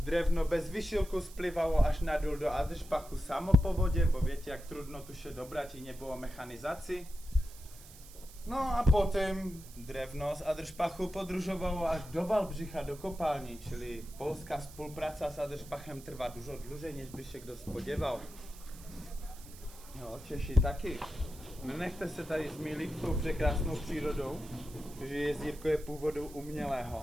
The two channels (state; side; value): noise; right; hiss, 19 dB below the sound